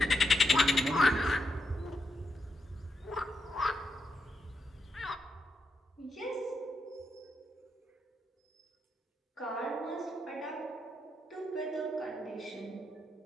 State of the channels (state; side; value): normal; both; correlation 0.83